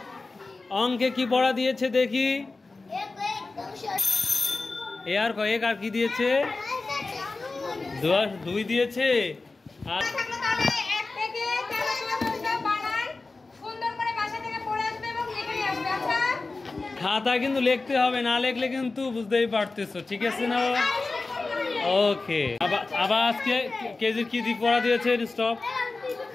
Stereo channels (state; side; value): quieter; right; 3.6 dB